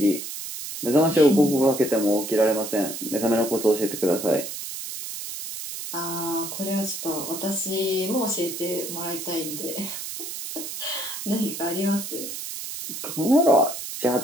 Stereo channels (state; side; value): noise; right; hiss, 7 dB below the sound